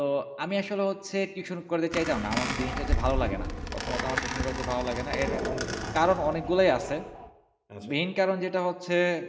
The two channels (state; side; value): identical; both; correlation 1.00